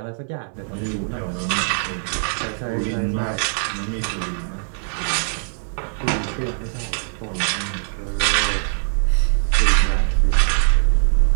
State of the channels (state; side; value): silent; left; digital silence